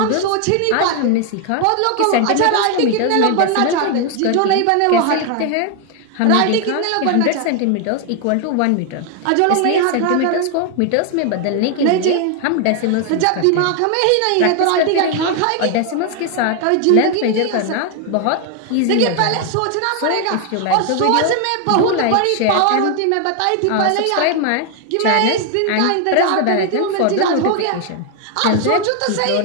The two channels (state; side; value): different; both; correlation 0.01